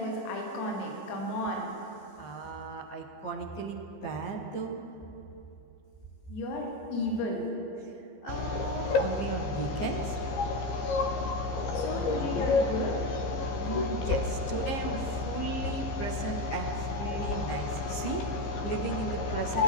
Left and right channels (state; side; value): late; right; 15 ms